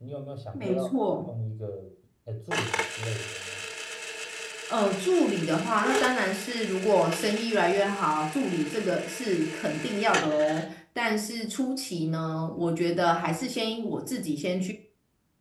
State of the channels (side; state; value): both; identical; correlation 1.00